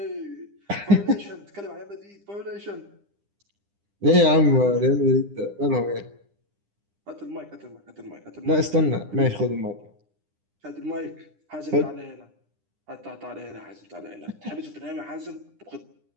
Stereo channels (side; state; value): left; late; 9.9 ms